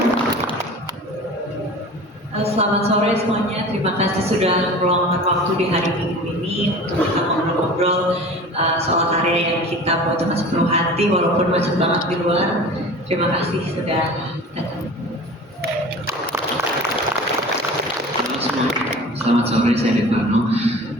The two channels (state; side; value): normal; both; correlation 0.39